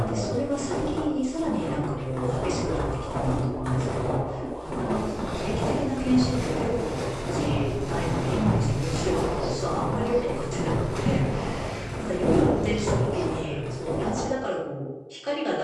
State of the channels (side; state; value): both; identical; correlation 1.00